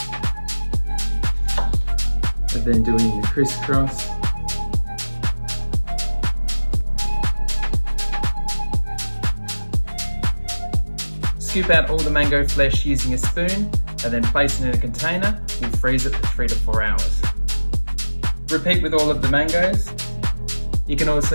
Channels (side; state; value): both; inverted; correlation -1.00